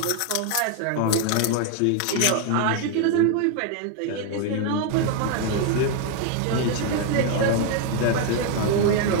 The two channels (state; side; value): different; both; correlation 0.00